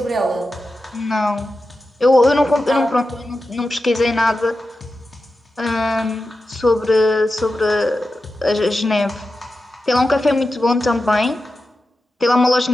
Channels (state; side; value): normal; both; correlation 0.91